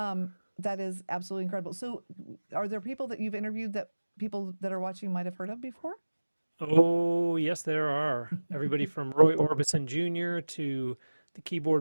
That is absolutely incredible. So are there people that you've interviewed that people that are watching might have heard of before? Oh, yes, there are. Everybody from Roy Orbison Jr. to the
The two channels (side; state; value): both; inverted; correlation -1.00